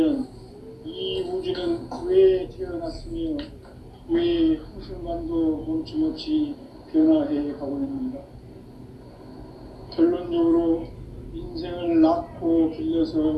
이 우주는 왜 태어났으며 왜 한순간도 멈춤없이 변화해 가고 있는가? 결론적으로 인생을 낳고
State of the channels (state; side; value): identical; both; correlation 1.00